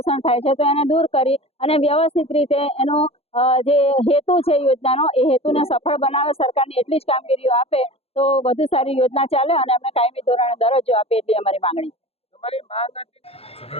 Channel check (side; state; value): right; late; 0.29 ms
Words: થાય છે, તો એને દૂર કરી અને વ્યવસ્થિત રીતે એનો જે હેતુ છે યોજનાનો એ હેતુને સફળ બનાવે, સરકારની એટલી જ કામગીરીઓ આપે તો વધુ સારી યોજના ચાલે અને અમને કાયમી ધોરણે દરજ્જો આપે એટલી અમારી માંગણી